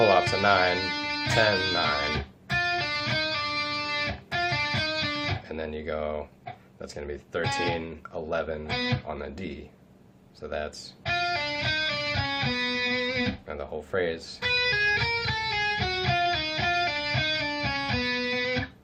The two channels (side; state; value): both; identical; correlation 1.00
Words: off to 9, 10, 9, and then you go, that's going to be 13, 11 on the D. So that's, and the whole phrase.